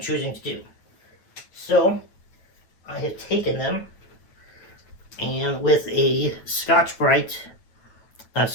choosing to do. So I have taken them, and with a Scotch-Brite, not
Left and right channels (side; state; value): right; late; 9.2 ms